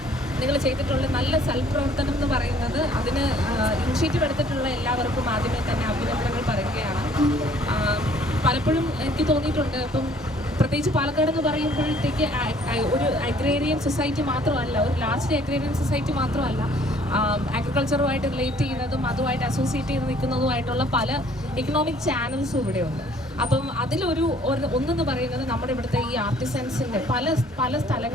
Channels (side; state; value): both; normal; correlation 0.58